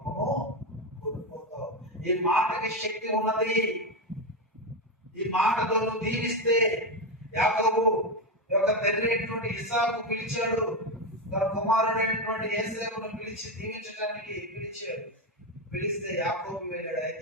కోల్పోతావు. ఈ మాటకి శక్తి ఉన్నది. ఈ మాటతో నువ్వు దీవిస్తే, యాకోబు యొక్క తండ్రి అయినటువంటి ఇస్సాకు పిలిచాడు, తన కుమారుడైనటువంటి యోసేపును పిలిచి దీవించడానికి పిలిచాడు. పిలిస్తే యాకోబు వెళ్ళాడు.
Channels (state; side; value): normal; both; correlation 0.12